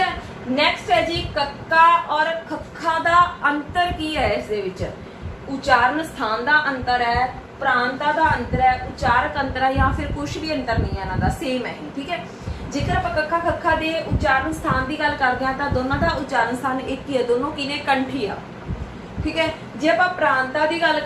ਨੈਕਸਟ ਹੈ ਜੀ ਕੱਕਾ ਔਰ ਖੱਖਾ ਦਾ ਅੰਤਰ ਕੀ ਹੈ? ਇਸ ਦੇ ਵਿੱਚ ਉਚਾਰਨ ਸਥਾਨ ਦਾ ਅੰਤਰ ਹੈ, ਪ੍ਰਾਂਤਾਂ ਦਾ ਅੰਤਰ ਹੈ, ਉਚਾਰਕ ਅੰਤਰ ਹੈ, ਜਾਂ ਫਿਰ ਕੁਝ ਵੀ ਅੰਤਰ ਨਹੀਂ ਹੈ ਇਹਨਾਂ ਦਾ, ਸੇਮ ਹੈ, ਠੀਕ ਹੈ। ਜੇਕਰ ਆਪਾਂ ਕੱਕਾ ਖੱਖਾ ਦੇ ਉਚਾਰਨ ਸਥਾਨ ਦੀ ਗੱਲ ਕਰਦੇ ਹਾਂ ਤਾਂ ਦੋਨਾਂ ਦਾ ਉਚਾਰਨ ਸਥਾਨ ਇੱਕ ਹੀ ਹੈ, ਦੋਨੋਂ ਕੀ ਨੇ? ਕੰਠੀ ਆ, ਠੀਕ ਹੈ। ਜੇ ਆਪਾਂ ਪ੍ਰਾਂਤਾਂ ਦੀ ਗੱਲ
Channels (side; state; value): both; identical; correlation 1.00